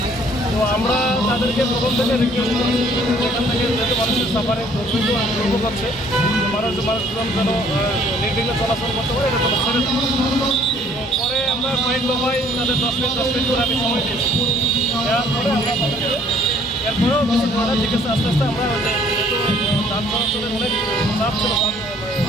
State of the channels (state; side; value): normal; both; correlation 0.59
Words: তো আমরা তাদেরকে প্রথম থেকে রিকোয়েস্ট করি এখান থেকে যেহেতু মানুষের সাফারে দুর্ভোগ হচ্ছে মানুষজন যেন নির্বিঘ্নে চলাচল করতে পারে এটা যেন ছেড়ে দেয়। তো পরে আমরা কয়েক দফায় তাদের 10 মিনিট করে আমি সময় দিয়েছি দেওয়ার পরে আমরা তাদেরকে এরপরেও কিছু ধরে ঠিক আছে আস্তে আস্তে আমরা যেহেতু যান চলাচলের অনেক চাপ ছিল